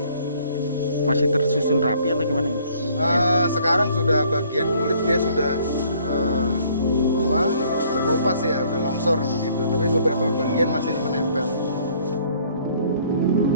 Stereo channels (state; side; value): inverted; both; correlation -0.60